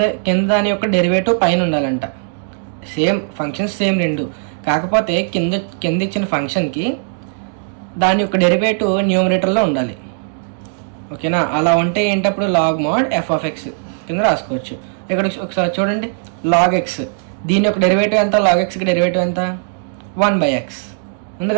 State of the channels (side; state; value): left; silent; digital silence